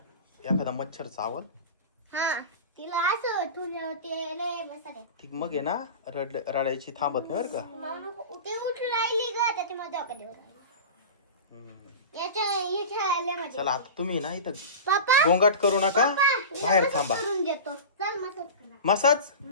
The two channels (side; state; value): both; inverted; correlation -0.30